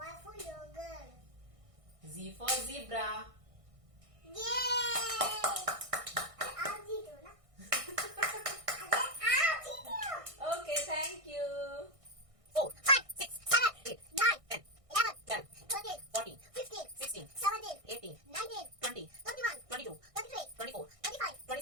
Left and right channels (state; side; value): late; left; 1.6 ms